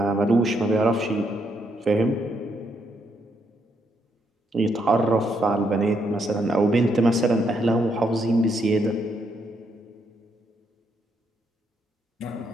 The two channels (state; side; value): normal; both; correlation 0.76